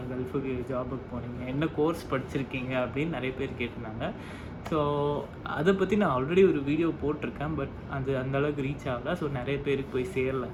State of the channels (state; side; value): identical; both; correlation 1.00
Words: கல்ஃபுக்கு ஜாபுக்கு போனீங்க, என்ன கோர்ஸ் படிச்சிருக்கீங்க அப்படின்னு நிறைய பேர் கேட்டிருந்தாங்க. ஸோ அதை பற்றி நான் ஆல்ரெடி ஒரு வீடியோ போட்டிருக்கேன், பட் அது அந்தளவுக்கு ரீச் ஆகலை. ஸோ நிறைய பேருக்கு போய் சேரல